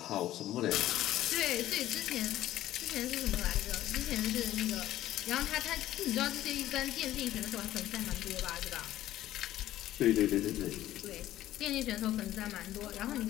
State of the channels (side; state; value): right; quieter; 13.8 dB